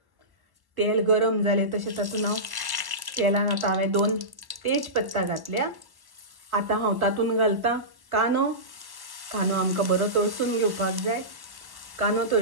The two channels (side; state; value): left; late; 1.1 ms